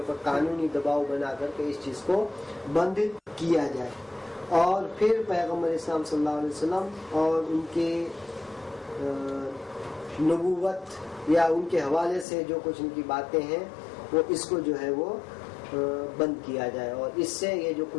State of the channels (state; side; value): drops out; right; at 12.2 s